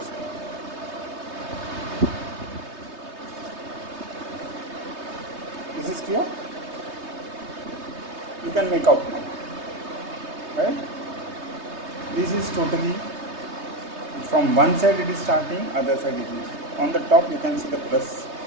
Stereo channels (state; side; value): late; left; 3.2 ms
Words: This is clear? You can make out now, right? This is totally from one side it is starting, other side it is. On the top you can see the plus